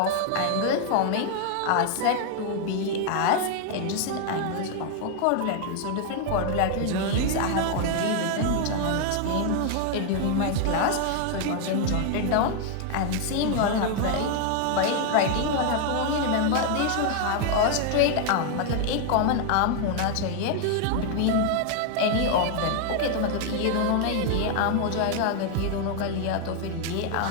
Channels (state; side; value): different; both; correlation 0.00